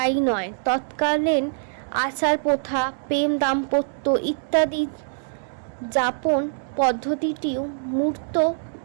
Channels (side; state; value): left; silent; digital silence